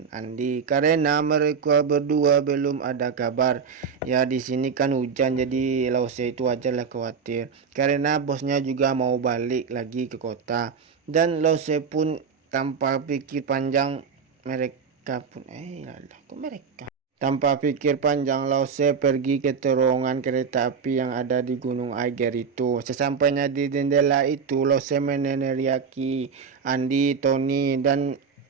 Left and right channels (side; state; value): left; quieter; 6.1 dB